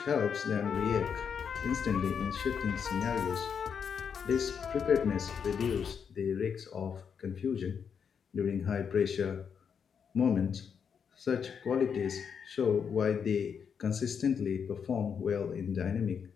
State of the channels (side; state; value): right; quieter; 6.9 dB